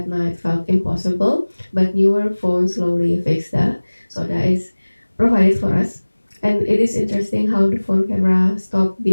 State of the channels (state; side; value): inverted; both; correlation -1.00